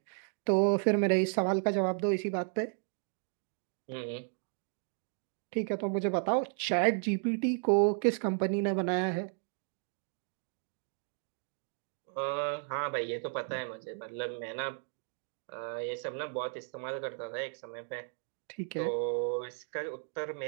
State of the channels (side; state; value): left; silent; 55 dB below the other